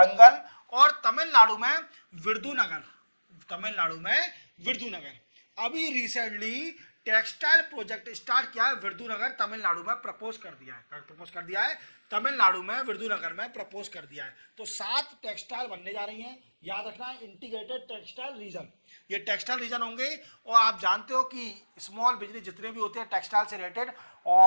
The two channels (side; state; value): both; inverted; correlation -1.00